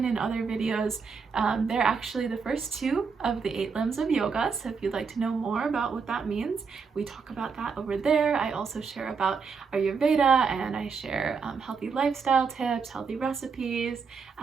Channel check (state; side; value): quieter; left; 5.5 dB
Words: in other videos, they're actually the first 2 of the 8 limbs of yoga. So if you'd like to know more about what that means, we talk about that over there. I also share about Ayurveda, and I share healthy lifestyle tips, healthy recipes,